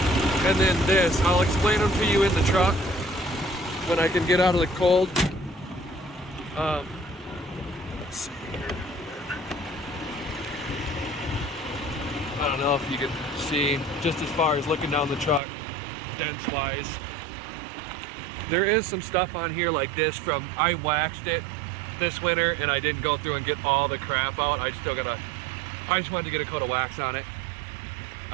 and then this. I'll explain them to you in the truck when I can get out of the cold. Let's see here. I don't know if you can see, just as far as looking down the truck, dents wise. There is some stuff on here like this from, I waxed it this winter and I didn't go through and get all the crap out. I just wanted to get a coat of wax on it.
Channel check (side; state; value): left; drops out; at 15.4 s